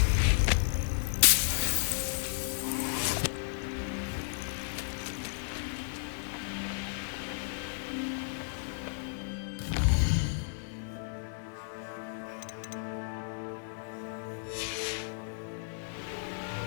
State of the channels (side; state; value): right; silent; 56 dB below the other